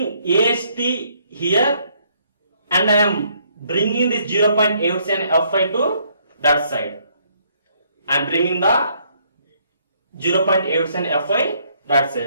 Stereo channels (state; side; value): inverted; both; correlation -0.68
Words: AST here and I am bringing this 0.87 Fy to that side. I am bringing the 0.87 Fy that